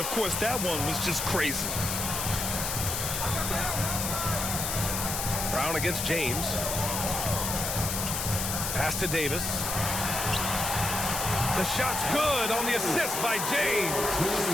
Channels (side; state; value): left; noise; hiss, 2 dB below the sound